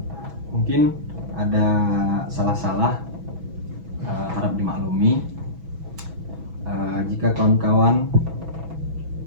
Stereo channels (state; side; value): late; left; 6.1 ms